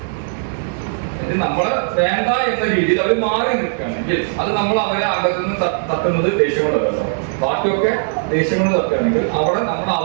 നമ്മള് വേണ്ട എന്ന രീതിയിൽ അവർ മാറി നിൽക്കുകയാണെങ്കിൽ അത് നമ്മൾ അവരെ അംഗത്തിൽ നിന്ന് തട്ടുന്നത് ദേഷ്യം കൊണ്ടല്ലോ. ബാക്കിയൊക്കെ ദേഷ്യം കൊണ്ട് തട്ടുകയാണെങ്കിൽ അവിടെ നമ്മൾ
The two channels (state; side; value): silent; left; digital silence